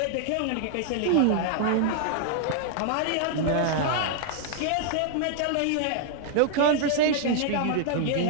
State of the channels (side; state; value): both; different; correlation -0.01